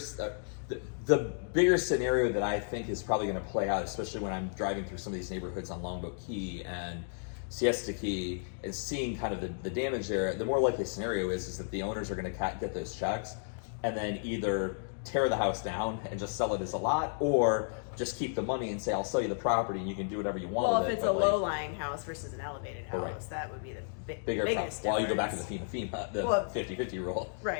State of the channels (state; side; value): silent; right; digital silence